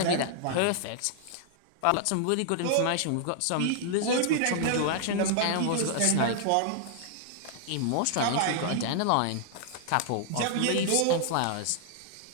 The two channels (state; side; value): different; both; correlation -0.01